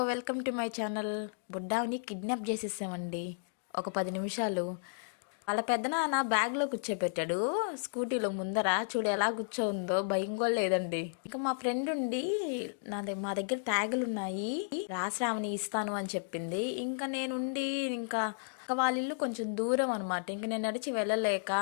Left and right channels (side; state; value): right; silent; digital silence